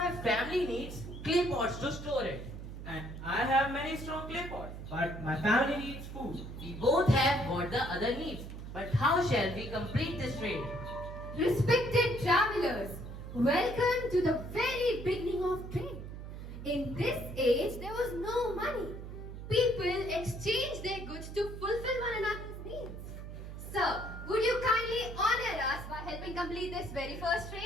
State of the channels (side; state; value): right; noise; hum, 10 dB below the sound